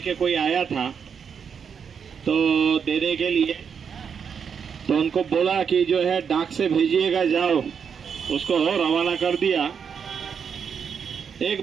कोई आया था तो देने के लिए, तो उनको बोला कि जो है डाक से भेजिएगा, जाओ, उसको रवाना कर दिया।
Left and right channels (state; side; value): quieter; left; 6.9 dB